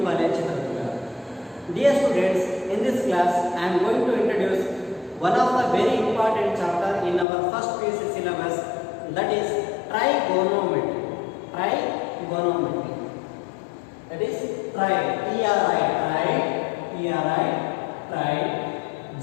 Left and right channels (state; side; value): drops out; right; at 7.2 s